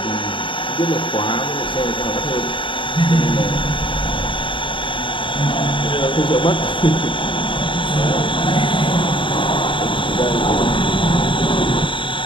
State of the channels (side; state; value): right; late; 0.24 ms